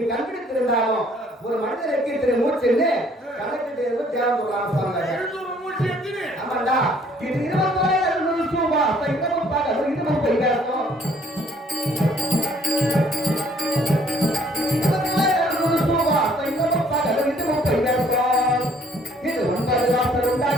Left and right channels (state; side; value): normal; both; correlation 0.61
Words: கண்டுபிடித்திருந்தாலும் ஒரு மனிதனுக்கு இத்தனை மூச்சுன்னு கணக்கிட்டு தேவன் ராமசாமி. ஆமாண்டா, இது 20,000 ரூபாய் இன்னமும் பார்க்க இன்னமும் போய் பேசணும். இது 9 வாசல்